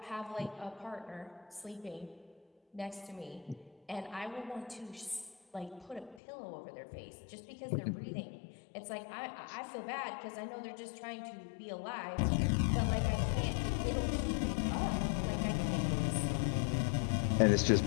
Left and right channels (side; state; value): right; drops out; at 6.2 s